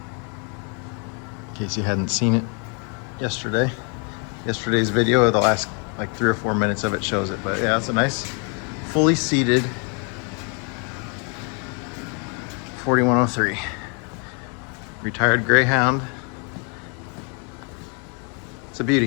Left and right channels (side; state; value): right; quieter; 37.2 dB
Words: case you hadn't seen it yesterday. Yesterday's video, the last like 3 or 4 minutes of it shows it. But yeah, it's a nice, fully seated 4103. Retired Greyhound. It's a